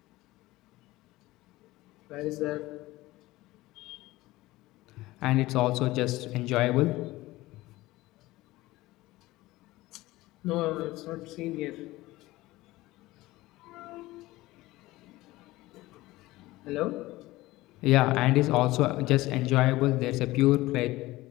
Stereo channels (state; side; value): quieter; right; 18.5 dB